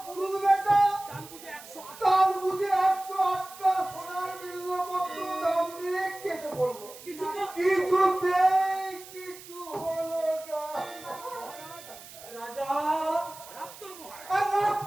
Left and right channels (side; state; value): right; noise; hiss, 17 dB below the sound